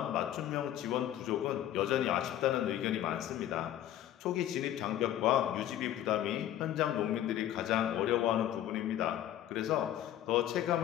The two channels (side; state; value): right; quieter; 12.0 dB